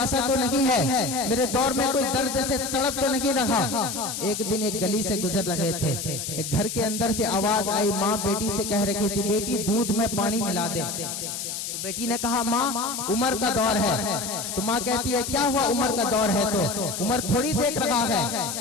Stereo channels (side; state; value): left; noise; hiss, 5 dB below the sound